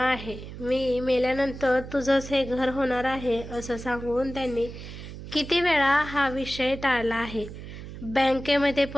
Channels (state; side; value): noise; right; hum, 11 dB below the sound